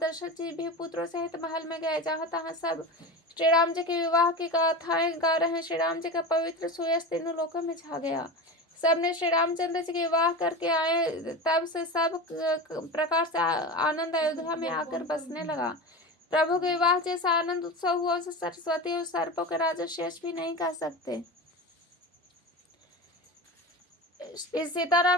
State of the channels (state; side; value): normal; both; correlation 0.27